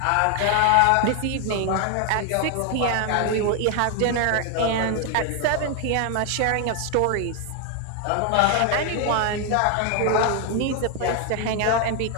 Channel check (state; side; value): different; both; correlation 0.00